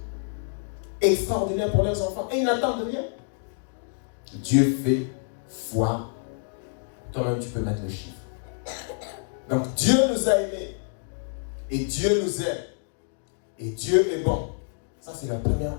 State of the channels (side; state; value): right; silent; digital silence